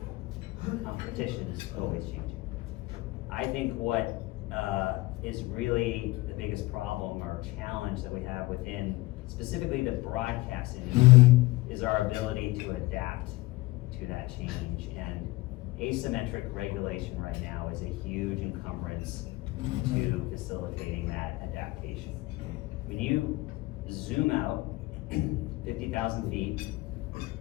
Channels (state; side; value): quieter; right; 20.7 dB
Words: Competition is always changing. I think what is really the biggest problem or challenge that we have within specifically the broadcast industry, is our ability to adapt to that change. And asymmetric regulation right now is a huge encumbrance to facilitating that adaptation. When you zoom out 50,000 feet,